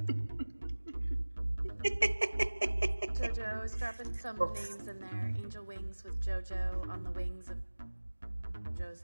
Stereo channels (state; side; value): inverted; both; correlation -1.00